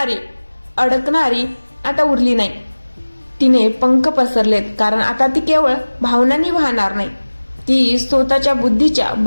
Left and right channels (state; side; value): inverted; both; correlation -1.00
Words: अडकणारी आता उरली नाही. तिने पंख पसरलेत, कारण आता ती केवळ भावनांनी वाहणार नाही, ती स्वतःच्या बुद्धीच्या